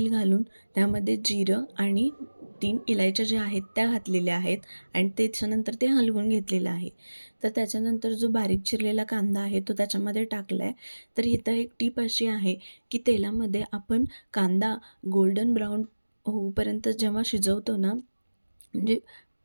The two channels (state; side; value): inverted; both; correlation -1.00